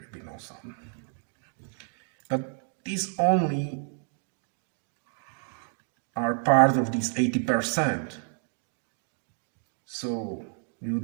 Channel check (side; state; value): left; quieter; 37.8 dB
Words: be no sun. But these only are part of these 80%. So we